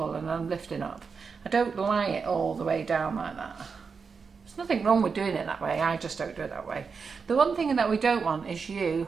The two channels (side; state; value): left; quieter; 5.4 dB